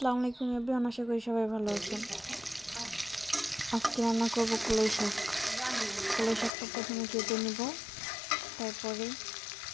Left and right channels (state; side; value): drops out; right; at 6.5 s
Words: আলাইকুম everyone. আশা করি সবাই ভালো আছেন। আজকে রান্না করব কলাই শাক। কলাই শাকটা প্রথমে কেটে নিব, তারপরে